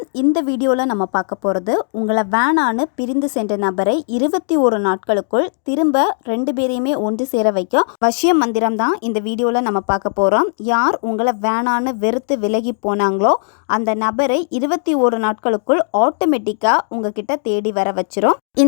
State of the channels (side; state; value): right; silent; digital silence